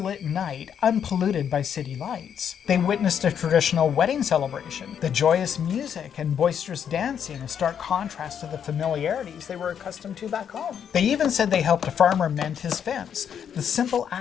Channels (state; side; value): quieter; right; 8.3 dB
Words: night unpolluted by city lights. They witnessed a traditional wedding celebration, the joyous music and boisterous dancing, a stark contrast to the familiarities they were accustomed to back home. They even said they helped a farmer mend his fence, the simple